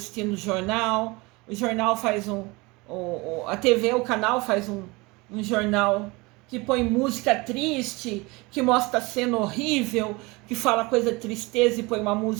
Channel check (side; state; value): left; quieter; 24.6 dB